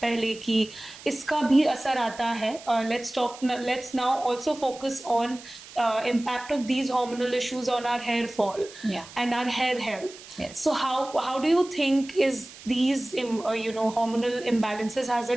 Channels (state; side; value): noise; right; hiss, 17 dB below the sound